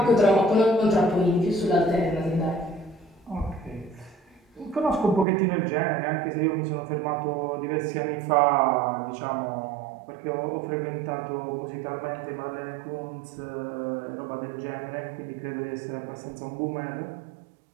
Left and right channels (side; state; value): left; drops out; at 5.2 s